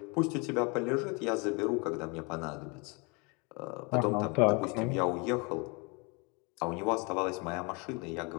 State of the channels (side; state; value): right; quieter; 30.3 dB